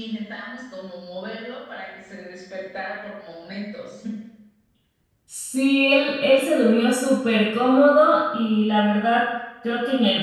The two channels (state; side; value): identical; both; correlation 1.00